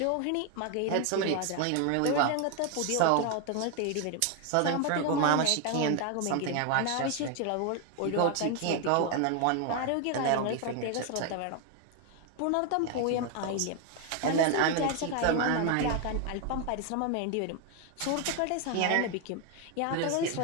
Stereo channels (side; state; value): both; different; correlation 0.01